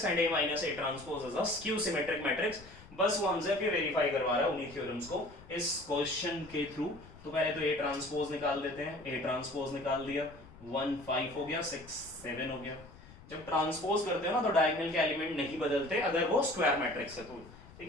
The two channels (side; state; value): left; noise; rumble, 20 dB below the sound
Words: and a minus a transpose is a skew symmetric matrix. बस वो हमसे फिर वेरीफाई करवा रहा है उन्हीं थ्योरम्स को इस क्वेश्चन के थ्रू। तो पहले तो a ट्रांसपोज निकाल देते हैं, a ट्रांसपोज निकाल दिया, 1 5 हो गया, 6 7 हो गया। जब ट्रांसपोज करते हो ना तो डायगोनल के एलिमेंट नहीं बदलते अगर वो स्क्वायर मैट्रिक्स है तो, ठीक